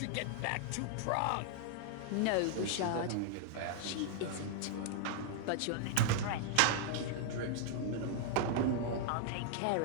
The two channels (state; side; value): different; both; correlation -0.01